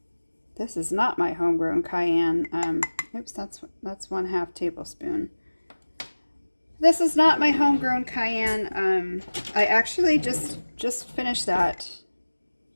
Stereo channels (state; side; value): inverted; both; correlation -1.00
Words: This is not my homegrown cayenne. Oops, that's 1/2 tablespoon. This is not my homegrown cayenne. I actually just finished that